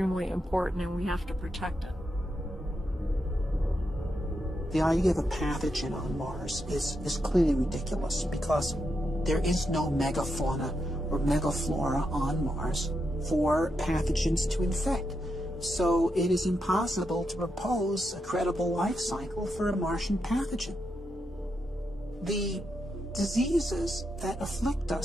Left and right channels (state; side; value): normal; both; correlation 0.84